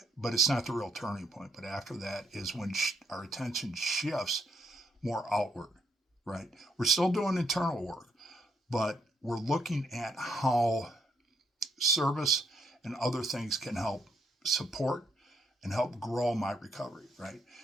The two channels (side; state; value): both; normal; correlation 0.74